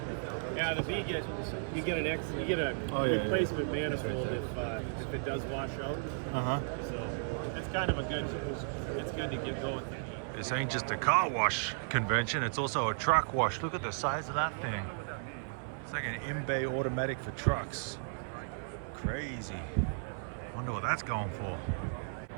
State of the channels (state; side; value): silent; left; 55 dB below the other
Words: Yeah, the B gets you get a replacement manifold if it does wash out. So it's kind of it's good to get going. This ain't just a car wash convention, it's also a truck wash. Look at the size of that thing. It's like an in-bay automatic for trucks. Crazy. Wonder what that's going for.